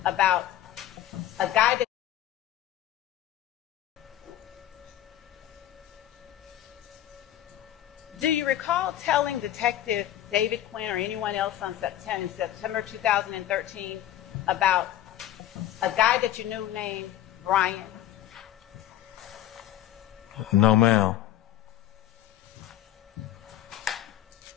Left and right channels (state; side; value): quieter; right; 12.8 dB